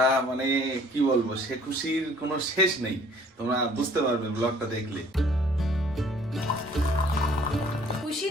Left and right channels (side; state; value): both; normal; correlation 0.56